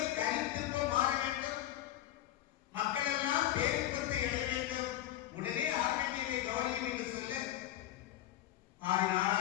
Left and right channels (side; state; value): right; quieter; 13.3 dB